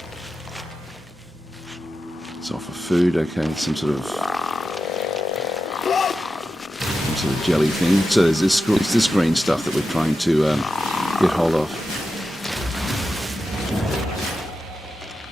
It's off of food, okay, some sort of jelly thing. So there's this green stuff that we're trying to get hold of.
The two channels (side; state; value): both; normal; correlation 0.90